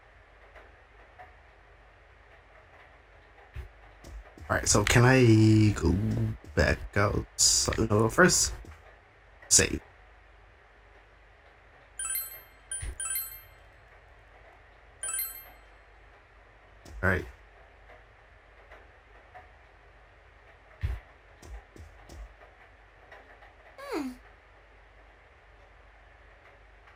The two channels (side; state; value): both; identical; correlation 1.00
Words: Alright, so can I go back out? So, no, first, save. Alright,